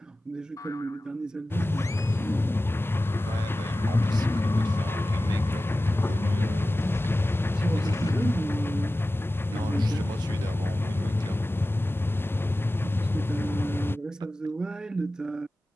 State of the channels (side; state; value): both; normal; correlation 0.95